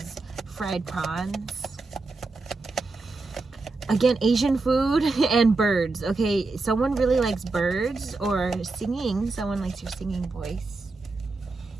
fried prawns. Again, Asian food and birds. Okay, someone really likes birds or singing. Someone likes your singing voice.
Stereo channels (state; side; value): quieter; left; 3.6 dB